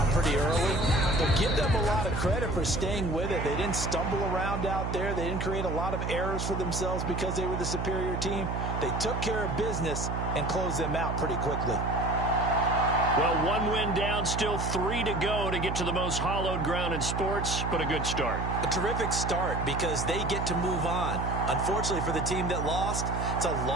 pretty early. But give them a lot of credit for staying with it. They didn't stumble around out there. They didn't create a lot of errors for themselves because they were the superior team. They took care of business and closed them out pretty quickly. Well, 1 win down, still 3 to go to get to the most hallowed ground in sports, but a good start. A terrific start because they get to move on. Unfortunately for the team that lost, it's a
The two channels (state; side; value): noise; right; hum, 2 dB below the sound